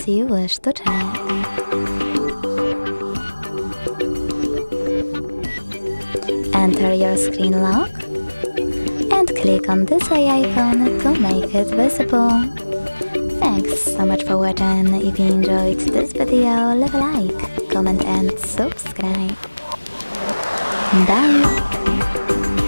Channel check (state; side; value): inverted; both; correlation -1.00